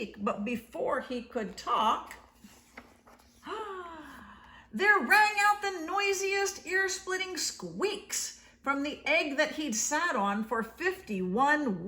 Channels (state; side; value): identical; both; correlation 1.00